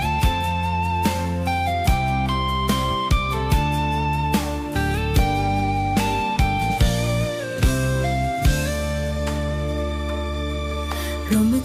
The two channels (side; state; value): both; identical; correlation 1.00